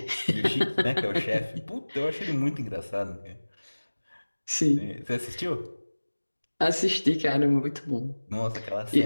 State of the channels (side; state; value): both; inverted; correlation -1.00